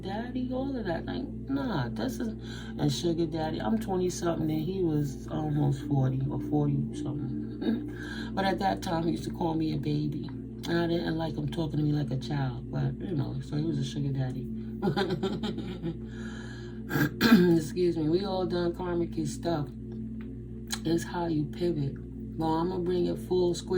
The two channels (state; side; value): identical; both; correlation 1.00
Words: all of that. Like, nah, this is a sugar daddy. I'm 20-something and he was almost 40 or 40-something. But at that time, he used to call me a baby. And I didn't like him talking to me like a child, but, you know, so he was a sugar daddy. Excuse me. We all done karmic stuff. It's how you pivot. Well, I'm going to bring it full